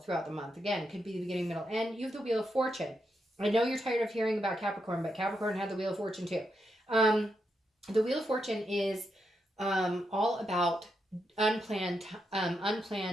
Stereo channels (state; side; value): normal; both; correlation 0.83